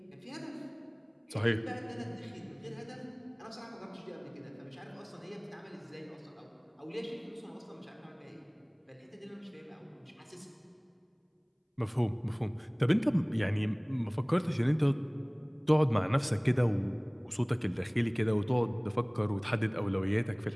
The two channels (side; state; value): both; identical; correlation 1.00